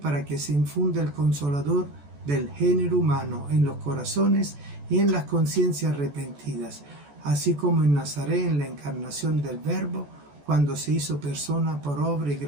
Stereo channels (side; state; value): left; late; 14 ms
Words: que se infunda el Consolador del género humano en los corazones y en las conciencias arrepentidas, así como en Nazaret en la encarnación del Verbo, cuando se hizo persona por obra y